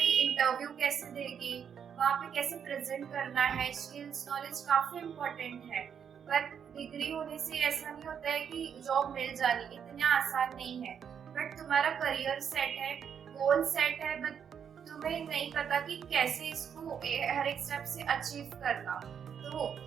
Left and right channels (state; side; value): quieter; left; 7.8 dB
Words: इंटरव्यू कैसे देंगे, वहाँ पे कैसे प्रेजेंट करना है, स्किल्स नॉलेज काफी इम्पोर्टेंट है। बट डिग्री होने से ऐसा नहीं होता है कि जॉब मिल जानी, इतना आसान नहीं है। बट तुम्हारा करियर सेट है, गोल सेट है, बट तुम्हें नहीं पता कि कैसे इसको हर एक स्टेप से अचीव करना। तो